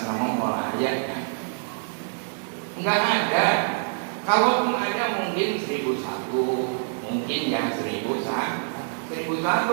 nama mola ayahnya enggak ada. Kalaupun ada mungkin 1001, mungkin ya 1001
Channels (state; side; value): silent; left; 61 dB below the other